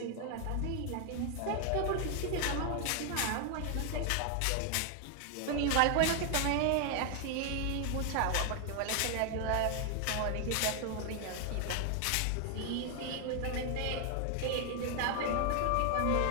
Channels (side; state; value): both; different; correlation 0.00